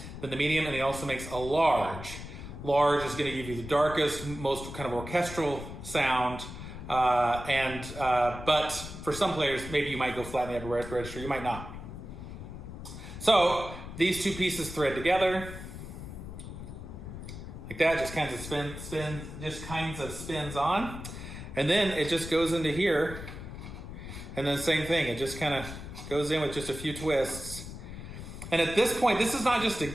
Then the medium, and he also makes a large. Large is going to give you the darkest, most kind of orchestral sound. But for some players, maybe you might go flat in the upper register, you might not. So these two pieces thread together like that, just kinds of spins on. And then it just goes into here, and then same thing. It just kind of goes in with just a few twists. And at this point, this is not just a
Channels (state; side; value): noise; left; rumble, 10 dB below the sound